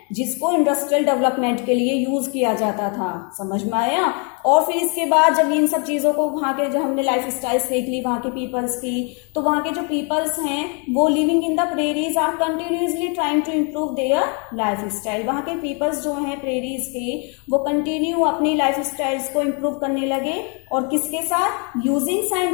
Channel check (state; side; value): quieter; right; 35.9 dB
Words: जिसको इंडस्ट्रियल डेवलपमेंट के लिए यूज किया जाता था, समझ में आया। और फिर इसके बाद जब इन सब चीज़ों को वहाँ के, जब हमने लाइफ स्टाइल्स देख ली वहाँ के पीपल्स की, तो वहाँ के जो पीपल्स हैं वो living in the prairies are continuously trying to improve their lifestyle. वहाँ के पीपल्स जो हैं प्रेरीज के, वो कंटिन्यू अपनी लाइफ स्टाइल्स को इम्प्रूव करने लगे, और किसके साथ, using